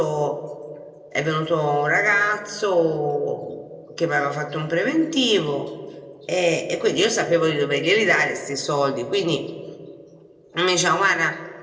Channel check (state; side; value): identical; both; correlation 1.00